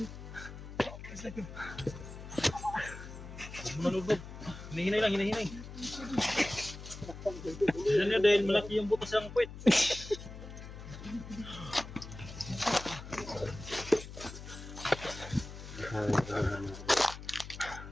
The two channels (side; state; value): left; noise; hum, 12 dB below the sound